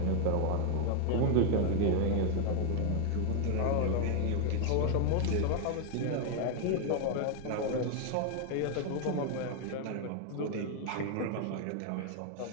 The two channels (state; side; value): different; both; correlation 0.00